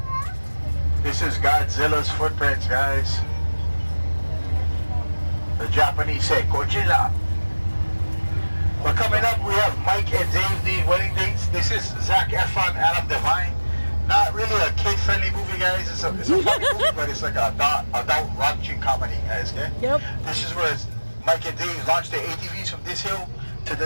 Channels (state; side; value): inverted; both; correlation -1.00